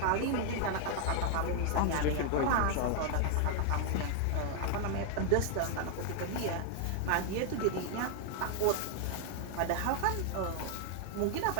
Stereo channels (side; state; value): both; different; correlation 0.00